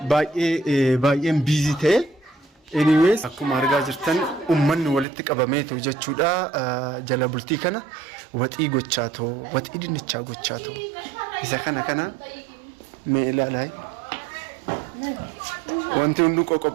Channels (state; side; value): drops out; left; at 5.1 s